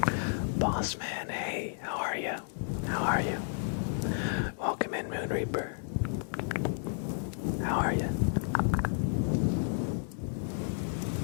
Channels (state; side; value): silent; right; 56 dB below the other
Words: Boss man, hey, how are you? How are you? Welcome in, Moon Reaper. How are you?